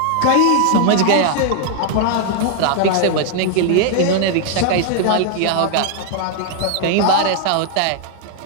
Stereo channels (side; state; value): both; different; correlation 0.00